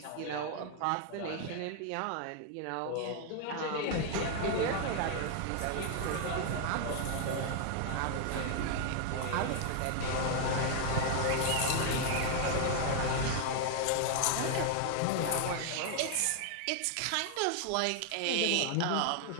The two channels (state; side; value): different; both; correlation 0.00